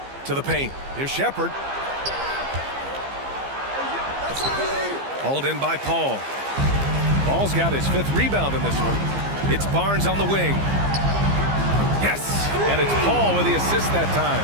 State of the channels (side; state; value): left; late; 15 ms